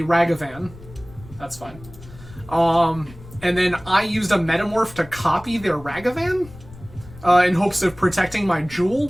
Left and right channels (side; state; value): left; noise; rumble, 19 dB below the sound